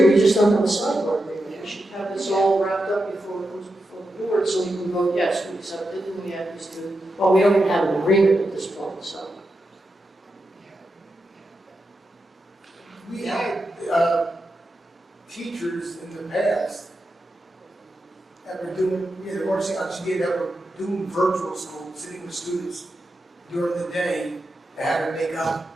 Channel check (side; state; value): both; normal; correlation 0.88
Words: we just don't have a sidebar agreement. We should have this all wrapped up before it comes before the board, so we can vote yes, we accept it, and we have these two. Well, we don't even have an agreement at this point, so. We had teachers in the past that were doing, the RCI did that were doing virtual school, sitting with students during the day, they had to make up